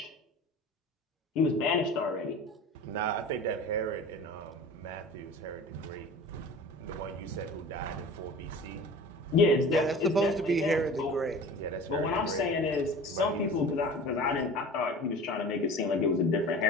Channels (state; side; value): normal; both; correlation 0.38